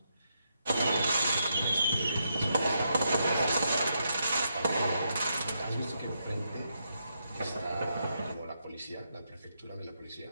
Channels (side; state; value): both; inverted; correlation -0.81